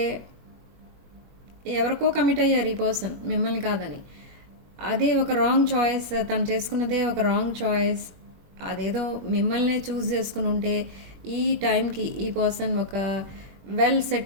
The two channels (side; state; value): left; late; 21 ms